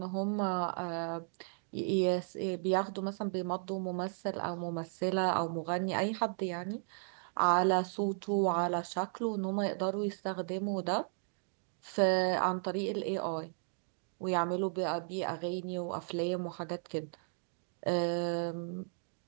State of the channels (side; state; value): left; silent; digital silence